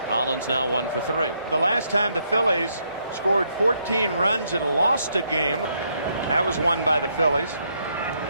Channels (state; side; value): inverted; both; correlation -0.74